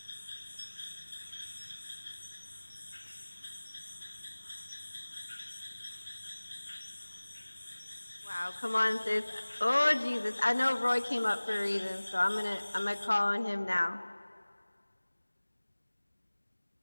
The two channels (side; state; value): both; inverted; correlation -1.00